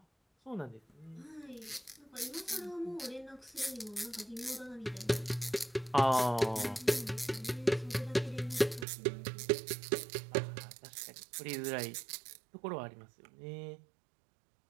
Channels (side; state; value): left; drops out; at 8.8 s